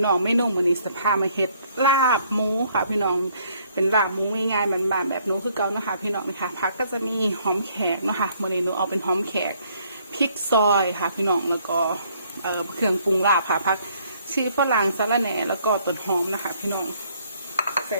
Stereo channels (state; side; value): inverted; both; correlation -0.65